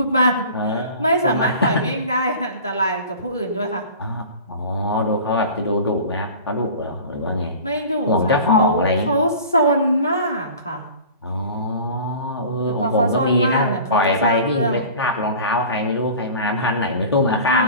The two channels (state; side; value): inverted; both; correlation -0.40